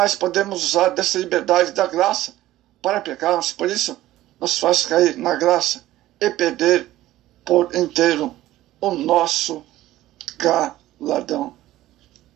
podemos usar dessa liberdade da graça para pecarmos. Por isso, nos faz cair na graça e perder por inteiro o nosso galardão.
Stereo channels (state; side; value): quieter; left; 15.2 dB